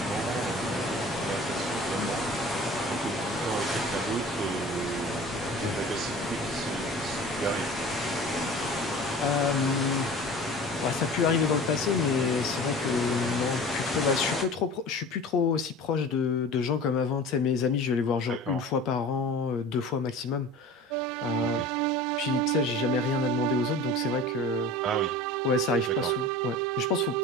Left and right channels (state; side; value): normal; both; correlation 0.39